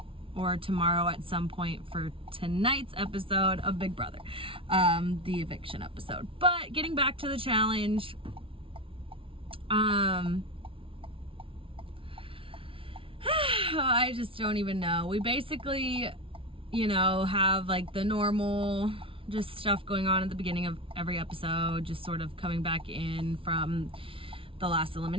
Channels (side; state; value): left; late; 0.26 ms